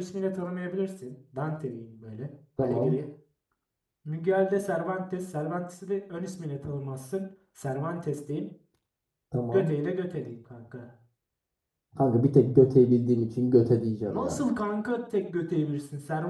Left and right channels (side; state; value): both; identical; correlation 1.00